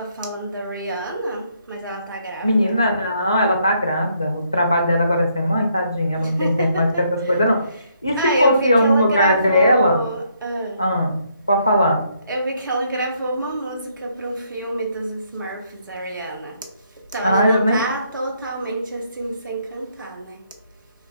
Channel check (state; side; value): inverted; both; correlation -0.71